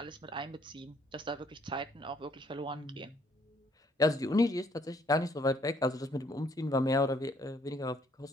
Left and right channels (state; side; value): normal; both; correlation 0.65